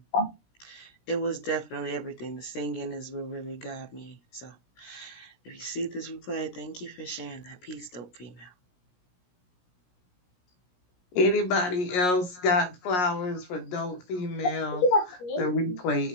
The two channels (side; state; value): right; late; 17 ms